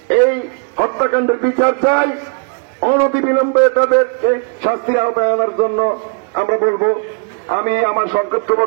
এই হত্যাকাণ্ডের বিচার চাই, অনতিবিলম্বে তাদেরকে শাস্তির আওতায় আনার জন্য আমরা বলবো। আমি আমার সংক্ষিপ্ত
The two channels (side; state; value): left; quieter; 39.1 dB